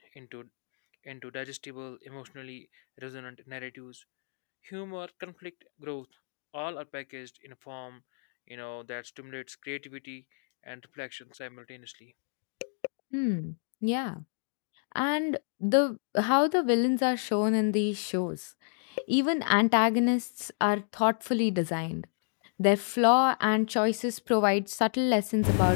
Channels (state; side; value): silent; right; digital silence